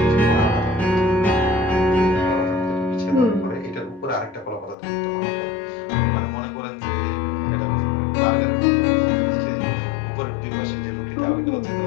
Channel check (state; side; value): drops out; right; at 4.8 s